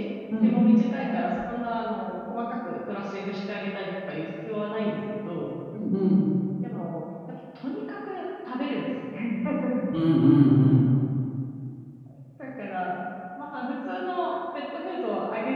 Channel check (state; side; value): identical; both; correlation 1.00